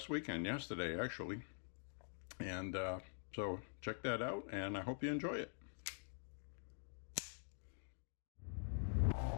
weekend, yesterday actually. And so check that out, and I hope you enjoy it.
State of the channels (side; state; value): right; silent; digital silence